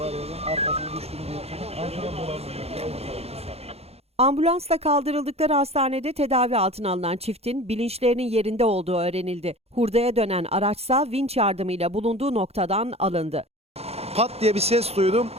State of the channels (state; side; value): late; left; 0.30 ms